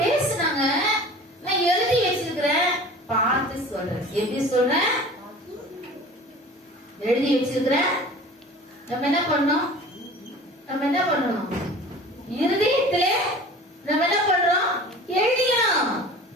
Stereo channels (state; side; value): normal; both; correlation 0.42